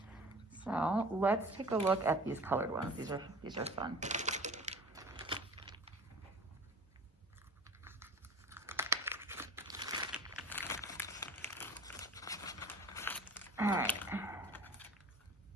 So let's take a look at these colored ones. These are fun. All right.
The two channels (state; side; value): normal; both; correlation 0.42